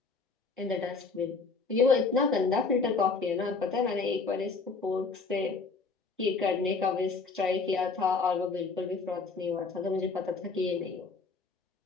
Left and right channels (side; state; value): right; quieter; 4.4 dB